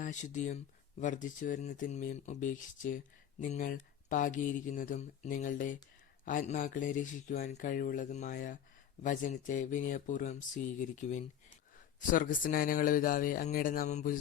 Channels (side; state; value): right; quieter; 9.7 dB